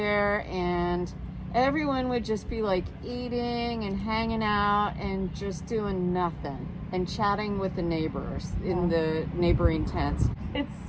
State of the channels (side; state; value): both; identical; correlation 1.00